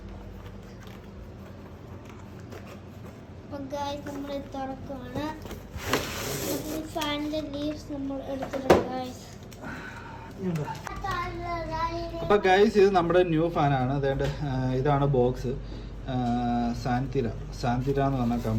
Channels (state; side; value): identical; both; correlation 1.00